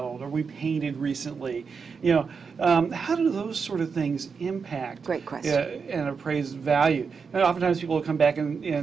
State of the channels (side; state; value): left; quieter; 5.6 dB